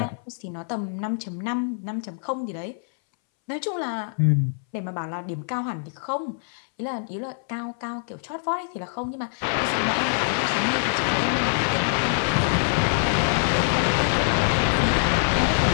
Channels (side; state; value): right; silent; 62 dB below the other